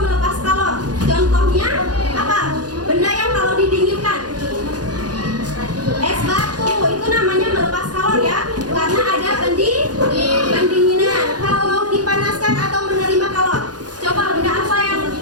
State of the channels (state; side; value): late; left; 0.69 ms